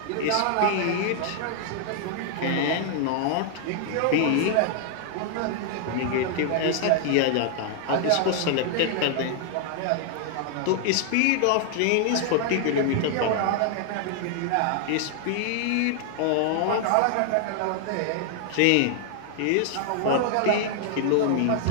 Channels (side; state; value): both; different; correlation 0.00